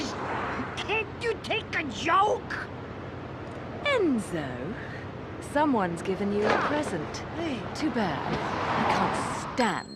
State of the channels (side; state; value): both; identical; correlation 1.00